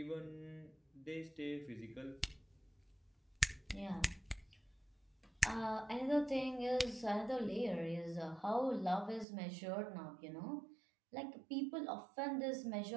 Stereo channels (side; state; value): left; drops out; at 9.2 s